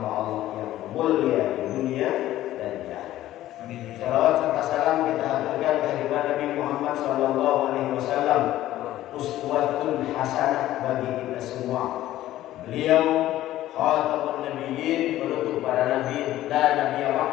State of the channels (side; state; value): right; quieter; 14.2 dB